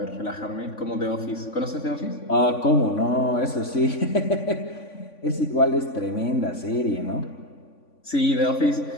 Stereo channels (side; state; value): right; late; 3.5 ms